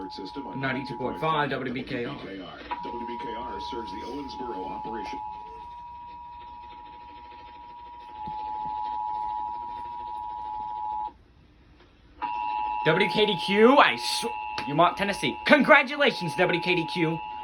system on 92.5 WBKR. WBKR serves the Owensboro operation. WKDQ, you want Tennessee. Congratulations, WKDQ.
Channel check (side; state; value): both; identical; correlation 1.00